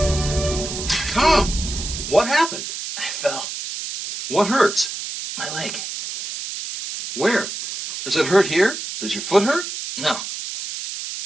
Tom, what happened? I fell. What hurts? My leg. Where? Does it hurt here? Does your foot hurt? No.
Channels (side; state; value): right; noise; hiss, 7 dB below the sound